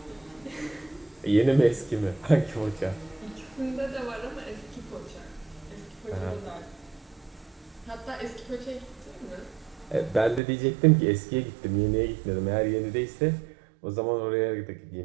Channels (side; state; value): left; drops out; at 10.4 s